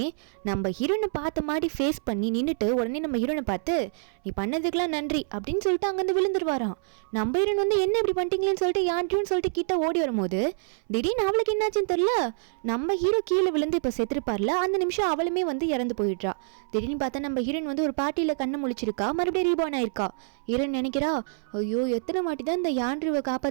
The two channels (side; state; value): left; silent; 60 dB below the other